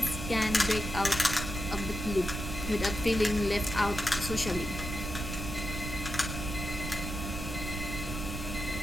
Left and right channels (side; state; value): right; noise; rumble, 5 dB below the sound